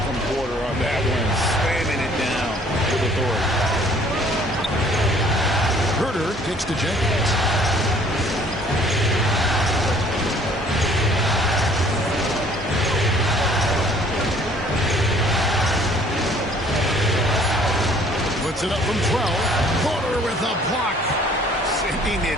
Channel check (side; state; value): both; normal; correlation 0.57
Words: from Porter on that one, slamming it down with authority. Huerter kicks to Jenkins. Puts it up from 12. Porter with a block. Sending